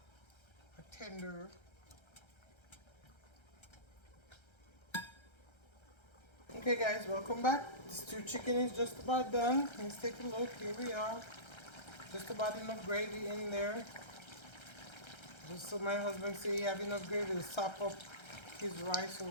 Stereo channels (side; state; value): right; late; 1.3 ms